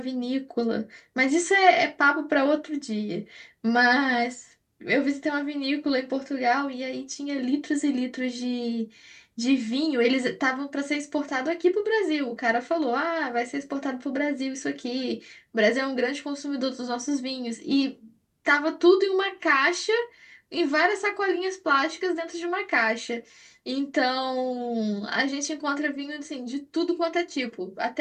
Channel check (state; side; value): identical; both; correlation 1.00